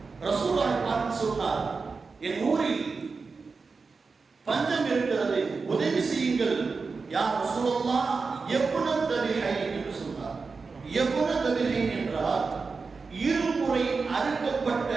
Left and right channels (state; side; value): quieter; left; 4.5 dB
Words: ரசூலுல்லாஹை பார்த்து சொன்னார், என் ஊரில் பஞ்சம் இருக்கிறது, உதவி செய்யுங்கள். யா ரசூலுல்லாஹ், எப்ன தபிஹை என்று சொன்னார். எப்ன தபிஹை என்றால் இருமுறை அறுக்கப்பட்ட